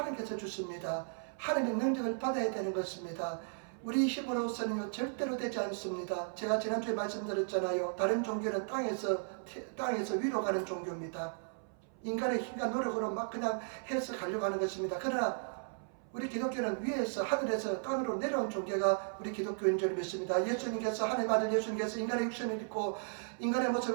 주십니다. 하나님의 능력을 받아야 되는 것입니다. 우리 힘으로서는 절대로 되지 않습니다. 제가 지난주에 말씀드렸잖아요. 다른 종교는 땅에서 위로 가는 종교입니다. 인간의 힘과 노력으로 막 그냥 해서 가려고 하는 것입니다. 그러나 우리 기독교는 위에서 하늘에서 땅으로 내려온 종교가 우리 기독교인 줄 믿습니다. 예수님께서, 하나님 아들 예수님께서 인간의 육신을 입고 인간의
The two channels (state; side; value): silent; left; 54 dB below the other